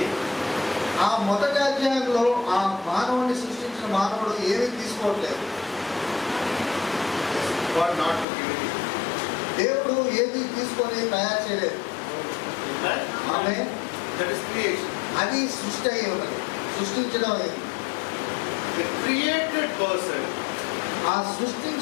ఆ మొదటి అధ్యాయంలో ఆ మానవుని సృష్టించిన మానవుడు ఏమీ తీసుకోవట్లేదు. God not to give anything. దేవుడు ఏది తీసుకొని తయారు చేయలేదు. Amen. ఆమె That is creation. అది సృష్టి అయి ఉన్నది, సృష్టించడం అయింది. The created person ఆ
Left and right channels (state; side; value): drops out; right; at 8.2 s